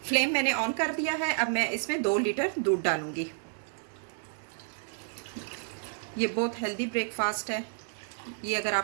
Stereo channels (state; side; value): silent; left; digital silence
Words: फ्लेम मैंने ऑन कर दिया है। अब मैं इसमें 2 लीटर दूध डालूँगी। ये बहुत हेल्दी ब्रेकफास्ट है। ये अगर